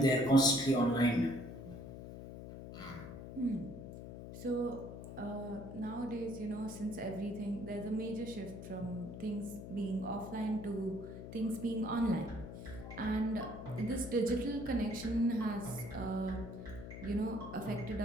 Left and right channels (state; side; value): noise; left; hum, 10 dB below the sound